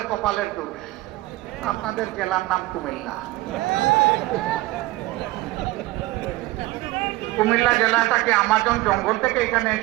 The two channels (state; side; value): quieter; left; 19.0 dB